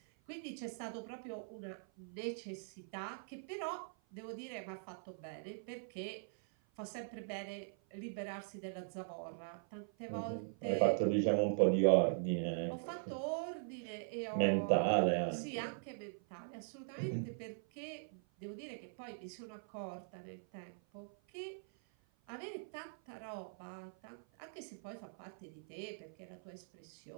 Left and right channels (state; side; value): silent; left; 50 dB below the other